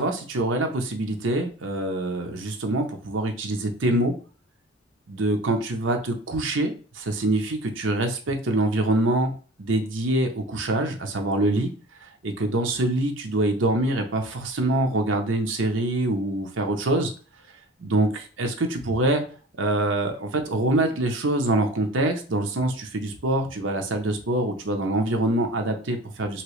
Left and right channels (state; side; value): normal; both; correlation 0.39